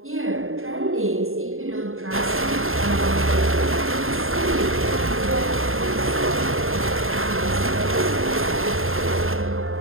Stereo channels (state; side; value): late; left; 0.61 ms